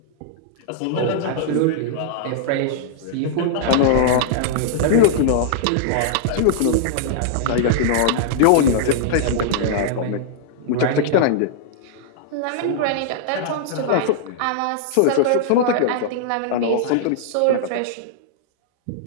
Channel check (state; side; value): different; both; correlation -0.01